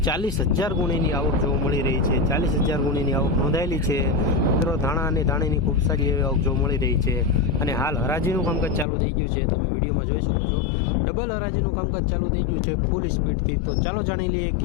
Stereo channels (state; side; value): drops out; right; at 8.8 s